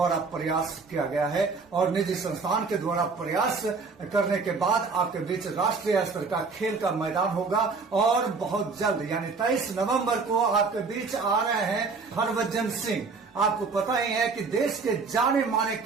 प्रयास किया गया है और निजी संस्थान के द्वारा प्रयास करने के बाद आपके बीच राष्ट्रीय स्तर का खेल का मैदान होगा। और बहुत जल्द यानी 23 नवंबर को आपके बीच आ रहे हैं हरभजन सिंह। आपको पता ही है कि देश के जाने माने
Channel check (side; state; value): left; quieter; 4.5 dB